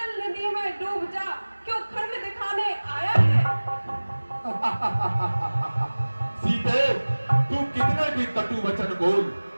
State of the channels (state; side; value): inverted; both; correlation -1.00